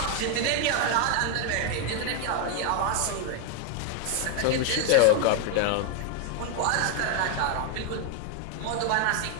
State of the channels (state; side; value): different; both; correlation 0.01